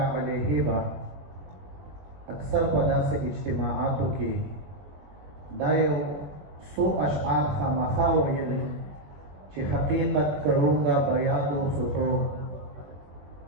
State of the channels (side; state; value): left; late; 21 ms